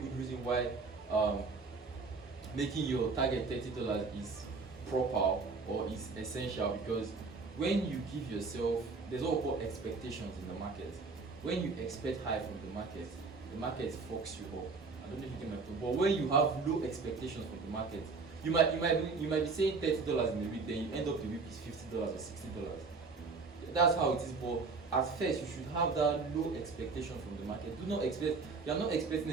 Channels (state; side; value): quieter; left; 4.3 dB